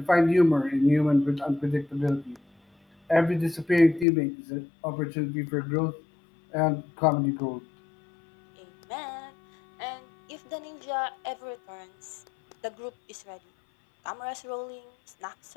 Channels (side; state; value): right; drops out; at 4.0 s